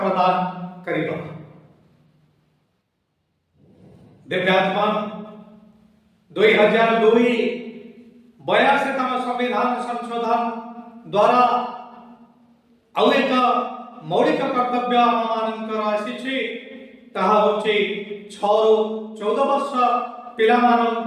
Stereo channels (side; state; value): both; identical; correlation 1.00